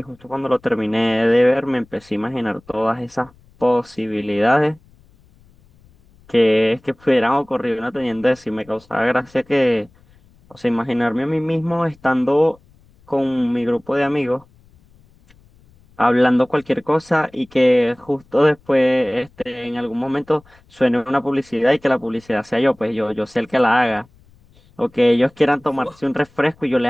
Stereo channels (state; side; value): noise; left; rumble, 30 dB below the sound